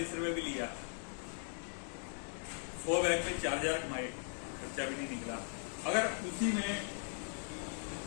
रुपए भी लिया, 100 बैग में 4000 कमाए, खर्चा भी नहीं निकला। अगर उसी में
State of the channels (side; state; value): right; silent; 52 dB below the other